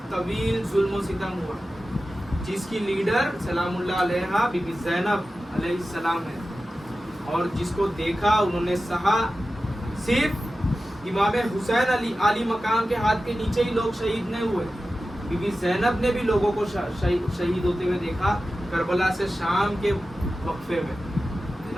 طویل ظلم و ستم ہوا, جس کی لیڈر سلام اللہ علیہا بی بی زینب علیہ السلام ہے, اور جس کو دیکھا انہوں نے سہا. صرف امام حسین علی مقام کے ہاتھ کے نیچے ہی لوگ شہید نہیں ہوئے, بی بی زینب نے بھی لوگوں کو شہید ہوتے ہوئے دیکھا کربلا سے شام کے وقفے میں, ہے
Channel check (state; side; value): normal; both; correlation 0.94